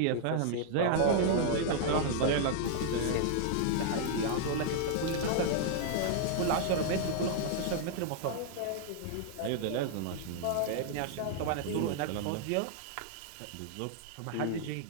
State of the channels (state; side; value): different; both; correlation -0.01